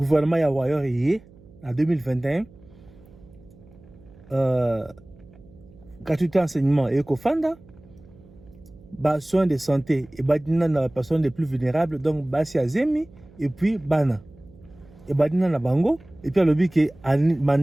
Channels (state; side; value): noise; right; hum, 24 dB below the sound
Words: ya Wayor en 2021, gratuité enseignement et Kofanda, soins de santé et badina na personnes les plus vulnérables, donc basi azemi et puis bana et badina na bango et puis alobi ke